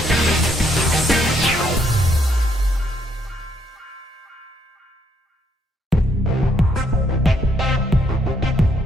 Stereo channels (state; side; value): normal; both; correlation 0.72